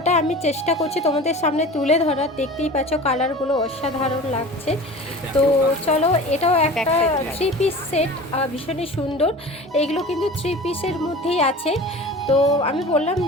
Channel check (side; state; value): both; normal; correlation 0.37